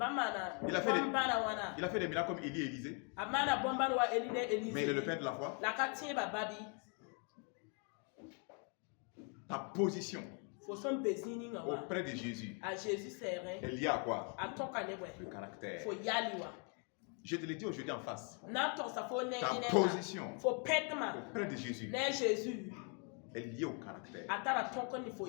Il a fait des miracles comme Élie et Élisée. Mais il est le père de la foi. Ta position auprès de Jésus est liée à quoi? Le caractère. Je te l'ai dit aujourd'hui en face. Ta position auprès de Jésus est liée au caractère.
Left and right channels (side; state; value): right; quieter; 39.0 dB